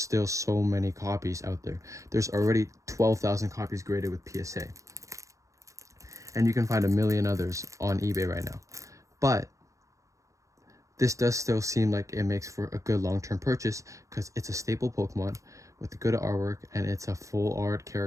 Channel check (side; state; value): left; late; 0.15 ms